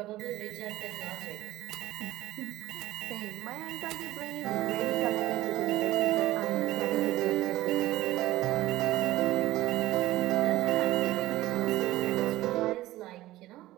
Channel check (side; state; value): left; quieter; 16.4 dB